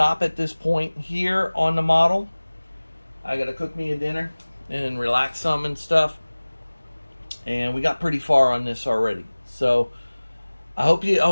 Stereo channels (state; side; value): inverted; both; correlation -1.00